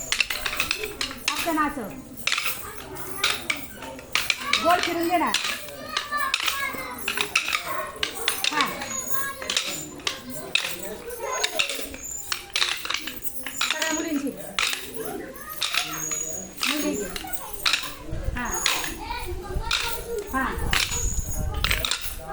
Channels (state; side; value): identical; both; correlation 1.00